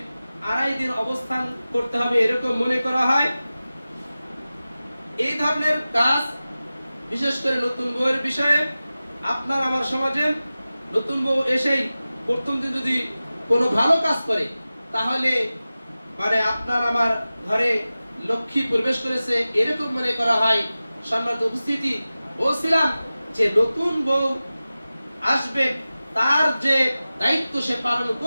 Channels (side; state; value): both; inverted; correlation -0.96